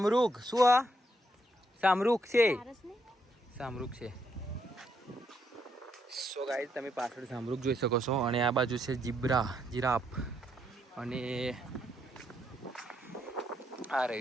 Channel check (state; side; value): normal; both; correlation 0.76